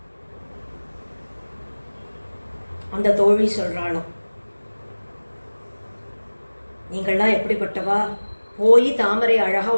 அந்த தோழி சொல்றாளாம், நீங்கள்லாம் எப்படிப்பட்டவா, போய் தாமரை அழகா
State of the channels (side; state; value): both; inverted; correlation -1.00